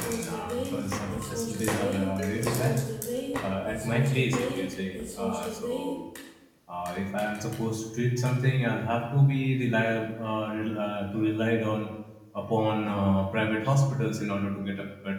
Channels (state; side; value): identical; both; correlation 1.00